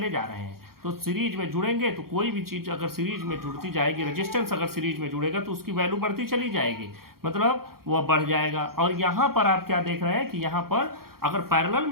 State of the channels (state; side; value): late; left; 0.93 ms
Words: जा रहे हैं। तो सीरीज में जुड़ेंगे तो कोई भी चीज़ अगर सीरीज में जुड़ती जाएगी, रेजिस्टेंस अगर सीरीज में जुड़ेगा तो उसकी वैल्यू बढ़ती चली जाएगी, मतलब वह बढ़ जाएगा। और यहाँ पर आप क्या देख रहे हैं कि यहाँ पर अगर पैरेलल